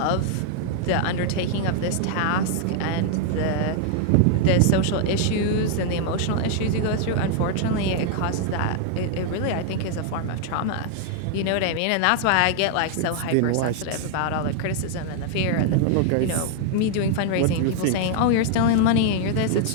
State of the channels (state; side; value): different; both; correlation 0.00